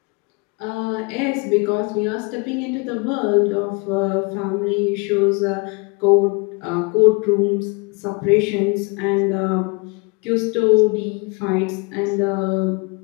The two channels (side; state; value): right; quieter; 28.7 dB